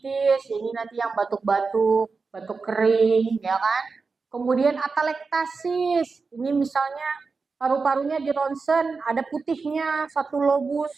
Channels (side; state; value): left; quieter; 4.5 dB